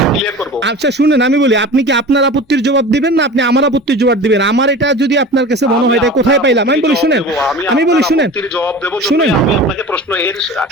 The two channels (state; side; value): normal; both; correlation 0.36